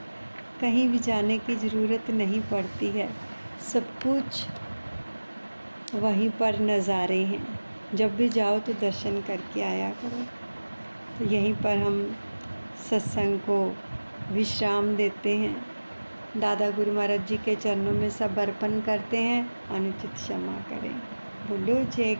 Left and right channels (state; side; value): inverted; both; correlation -1.00